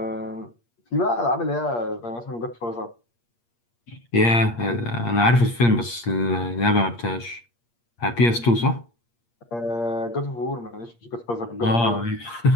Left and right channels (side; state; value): right; late; 8.5 ms